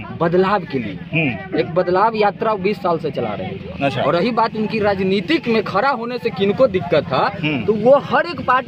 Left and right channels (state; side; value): identical; both; correlation 1.00